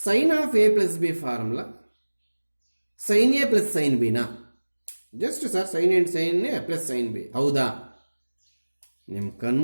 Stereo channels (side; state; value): both; inverted; correlation -1.00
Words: of A plus B formula sine A plus sine ಬಿನಾ? Just sir sine and sine A plus sine B. ಹೌದಾ? ನಿಮ್ಮ